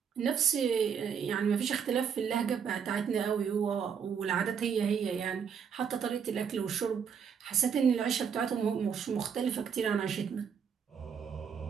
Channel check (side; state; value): left; quieter; 7.1 dB